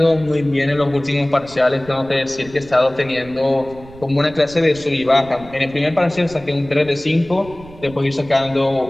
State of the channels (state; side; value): noise; right; rumble, 19 dB below the sound